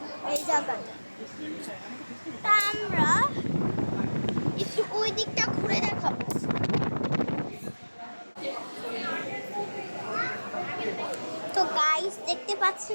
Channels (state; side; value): inverted; both; correlation -1.00